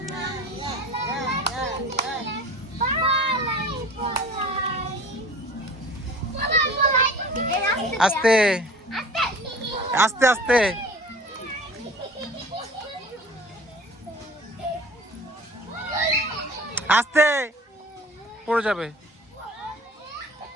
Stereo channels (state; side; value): normal; both; correlation 0.42